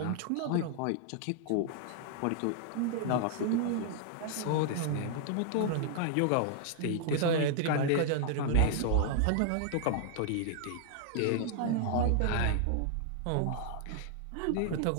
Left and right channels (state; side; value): different; both; correlation -0.01